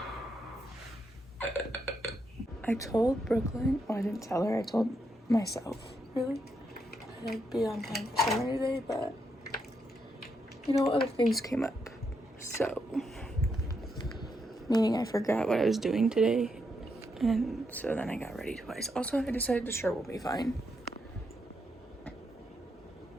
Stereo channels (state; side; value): normal; both; correlation 0.80